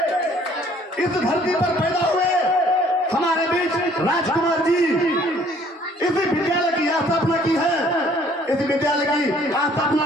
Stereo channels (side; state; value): both; normal; correlation 0.58